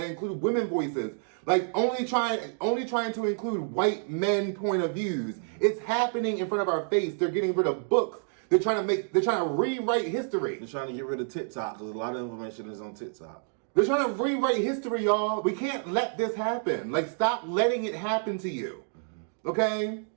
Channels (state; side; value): silent; left; 59 dB below the other